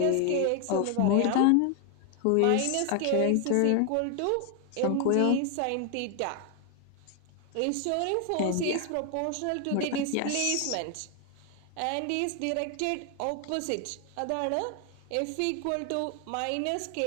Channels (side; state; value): both; different; correlation 0.00